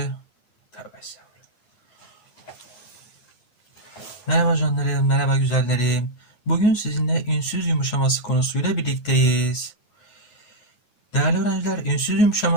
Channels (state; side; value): late; right; 8.5 ms